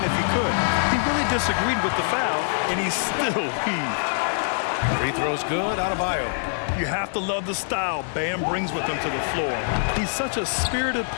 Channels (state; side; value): silent; right; digital silence